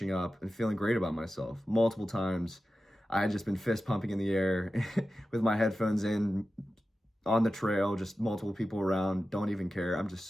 up, and feeling great about myself. Multiple times, I had just been fist pumping in the air with my headphones in on the trail, just multiple people around, don't even care. I'm just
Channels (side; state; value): both; normal; correlation 0.93